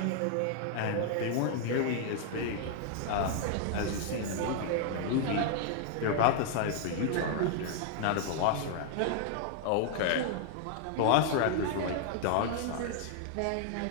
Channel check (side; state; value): both; different; correlation 0.00